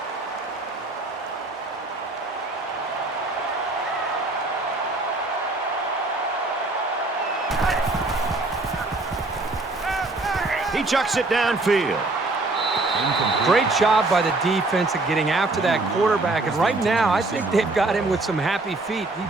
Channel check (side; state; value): left; quieter; 3.1 dB